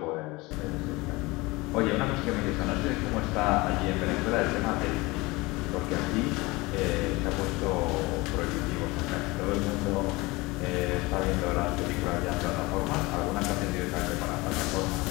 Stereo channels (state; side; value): quieter; right; 22.9 dB